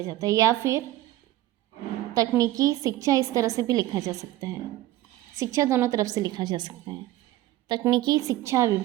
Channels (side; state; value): left; quieter; 15.4 dB